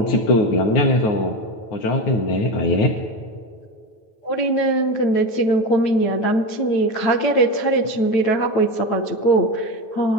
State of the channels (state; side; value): late; right; 9.2 ms